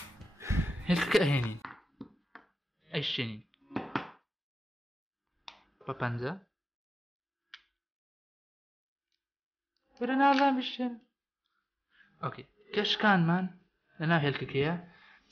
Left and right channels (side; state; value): both; normal; correlation 0.96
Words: هێلکەکە ئەهێنین ئەیشێنین بە 5 برە نازان بشێن ئۆکێ کەشکانمان لەناو هێلکەکەیە